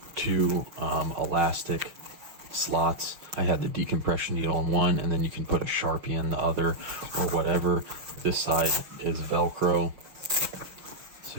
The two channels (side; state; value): left; late; 6.0 ms